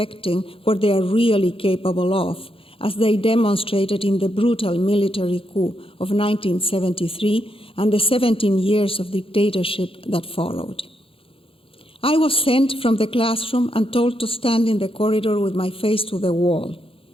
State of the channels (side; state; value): right; late; 0.27 ms